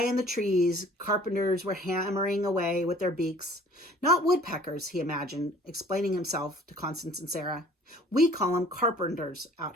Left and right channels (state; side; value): normal; both; correlation 0.52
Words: in the trees, carpenters were hammering away with their beaks. "Not woodpeckers," he imagined, explaining himself to Constance and Sarah. "We call them carpenters